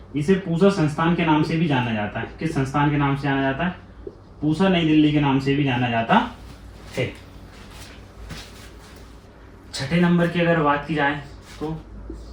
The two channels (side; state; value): both; identical; correlation 1.00